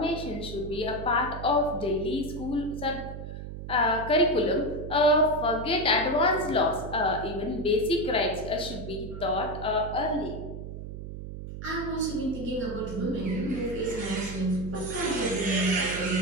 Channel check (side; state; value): right; noise; hum, 9 dB below the sound